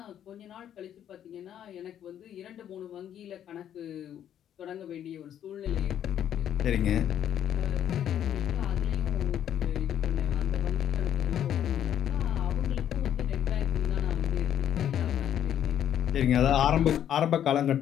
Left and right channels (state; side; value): quieter; right; 10.1 dB